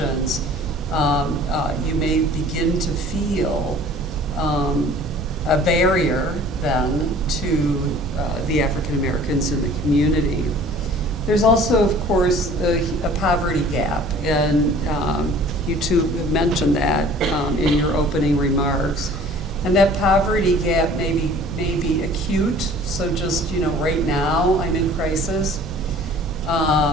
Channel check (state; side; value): normal; both; correlation 0.48